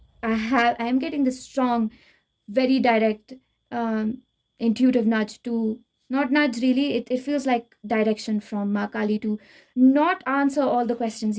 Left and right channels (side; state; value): both; identical; correlation 1.00